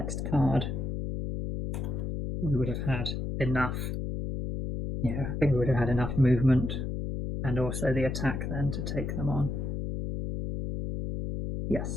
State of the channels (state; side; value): noise; left; hum, 3 dB below the sound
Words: card, we would have had enough. Yeah, I think we would have had enough movement and also the attack then to take them on.